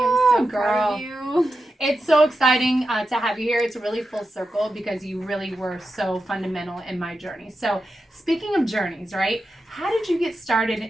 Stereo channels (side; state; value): both; normal; correlation 0.89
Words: so proud of you. It's so exciting to have you here. It's really full circle because you really were so fundamental in my journey. So speaking of journeys, right? How did you get